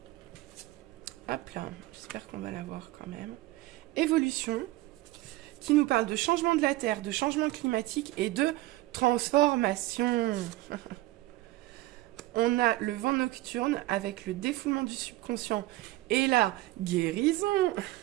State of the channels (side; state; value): left; quieter; 17.9 dB